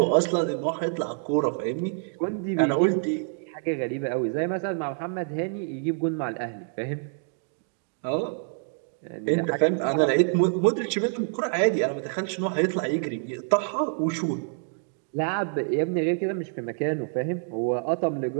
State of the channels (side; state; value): left; silent; 60 dB below the other